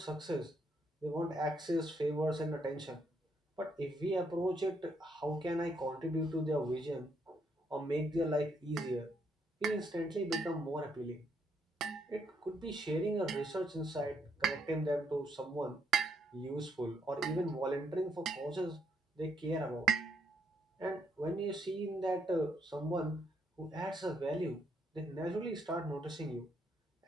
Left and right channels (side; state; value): both; normal; correlation 0.74